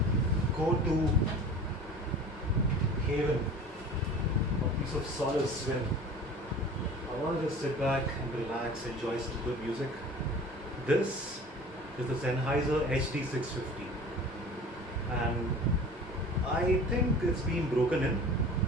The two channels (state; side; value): normal; both; correlation 0.41